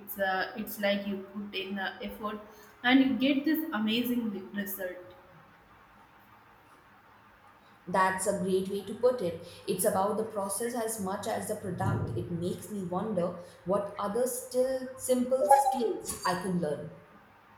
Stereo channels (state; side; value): identical; both; correlation 1.00